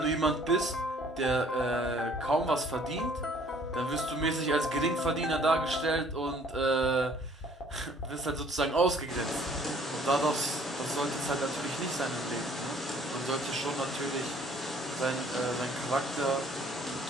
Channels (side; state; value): both; normal; correlation 0.58